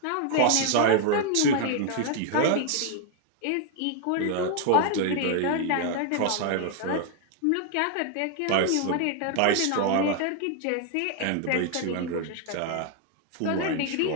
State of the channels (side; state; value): both; different; correlation 0.00